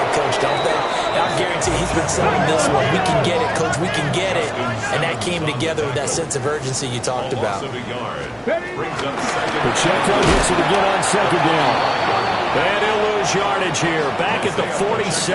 coach, don't they? And I guarantee he's been selling this one. We can get it, coach. We can get it. And that came together with that sense of urgency you talked about. Pacheco gets it again on second down. And he'll lose yardage here. Back at the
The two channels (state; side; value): identical; both; correlation 1.00